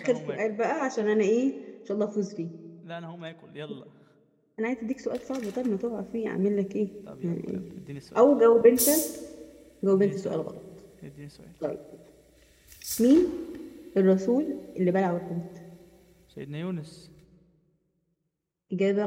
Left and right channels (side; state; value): both; identical; correlation 1.00